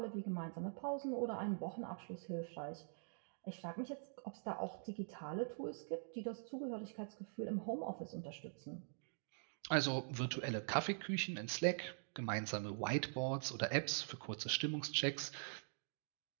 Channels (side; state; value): left; silent; digital silence